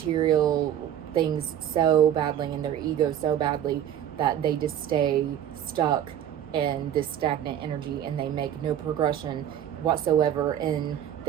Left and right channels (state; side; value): quieter; left; 10.3 dB